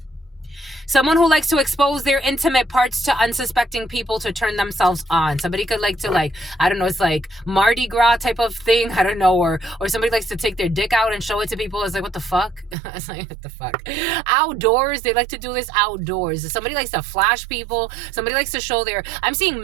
Someone who likes to expose their intimate parts to unsuspecting people to turn themselves on. Somebody could like to, I don't know, it's like Mardi Gras type of thing. I don't know. Or somebody likes to take their dick out and show it to people. It's like, what the fuck? It's like, what the fuck? Outdoors. They like to do this outdoors. Somebody likes to flash people. Somebody likes to show I'm seeing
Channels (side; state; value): left; drops out; at 12.8 s